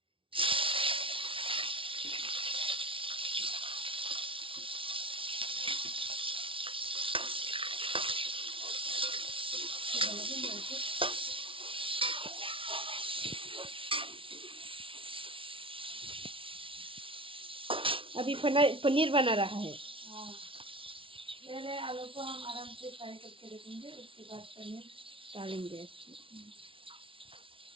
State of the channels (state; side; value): late; left; 0.25 ms